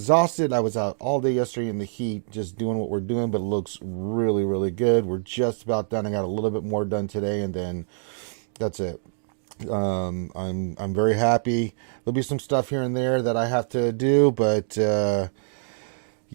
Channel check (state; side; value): silent; left; digital silence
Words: I was out all day yesterday in the heat just doing what we're doing, but it looks really, really good. We're just about done. I got a little bit more done today, and then that's it. I'm very happy. There'll be some stuff here and there that I have to do, but